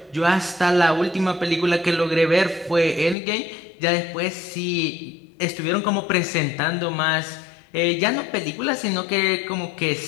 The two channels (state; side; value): drops out; right; at 3.2 s